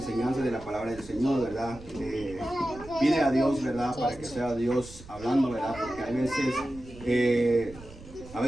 de la palabra del Señor, ¿verdad? Pide a Dios, ¿verdad?, para que sea Dios hablando, ¿verdad? Porque a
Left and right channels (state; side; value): noise; right; rumble, 17 dB below the sound